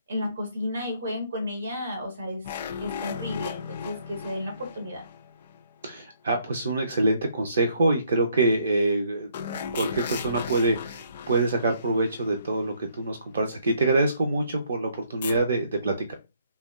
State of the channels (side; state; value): both; inverted; correlation -0.68